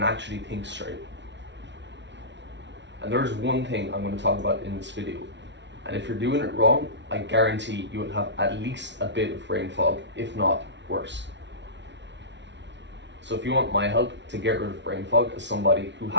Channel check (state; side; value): late; left; 0.52 ms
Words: actually think straight. And there's one thing I'm going to talk about in this video. And if you're doing it wrong, I guarantee you will have at least a bit of brain fog, if not worse. So if you want my help to get rid of brain fog as somebody who